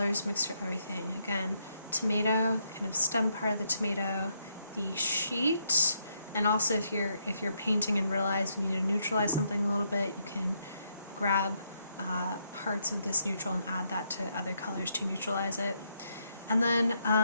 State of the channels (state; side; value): inverted; both; correlation -0.77